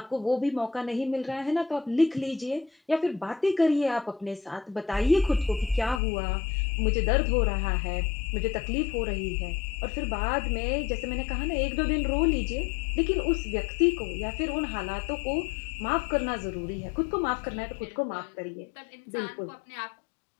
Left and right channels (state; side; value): drops out; right; at 6.0 s